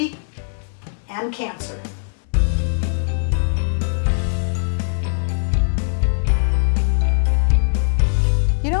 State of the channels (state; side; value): silent; right; digital silence